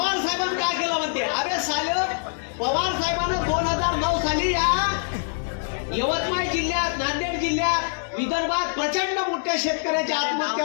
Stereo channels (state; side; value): silent; right; digital silence